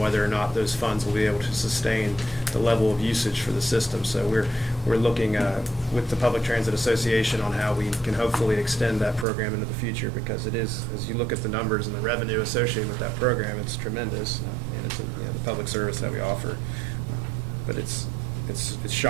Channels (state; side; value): drops out; left; at 9.2 s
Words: or not those funds will be able to sustain the level of usage for the system. So we're looking with the Public Transit Association on how we can hopefully extend that program into the future, because it is, as you look at the numbers and the revenue associated with that program, it's tremendous, and it's the public service that we offer. But it's